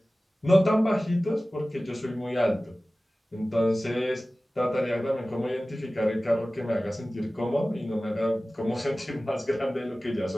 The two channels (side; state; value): both; normal; correlation 0.97